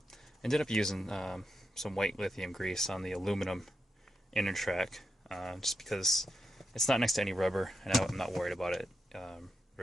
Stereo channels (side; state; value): both; normal; correlation 0.86